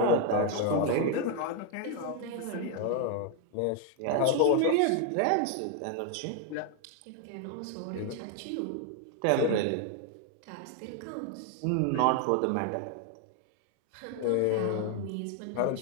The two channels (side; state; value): both; different; correlation 0.01